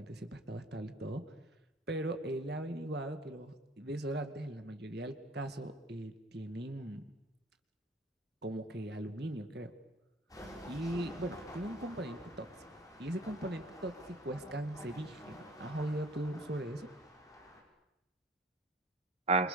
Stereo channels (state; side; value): normal; both; correlation 0.47